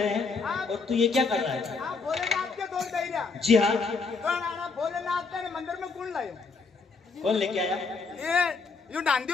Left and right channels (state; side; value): quieter; right; 4.4 dB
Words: हैं और तू ये क्या कर रहा है? भोलेनाथ के धोख दे रहा? जी हाँ। भोलेनाथ ने मंदिर में कौन लायो? कौन लेके आया? ये